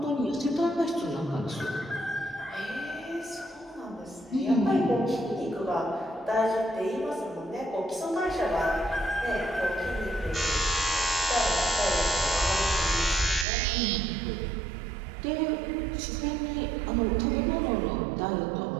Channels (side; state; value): left; drops out; at 13.5 s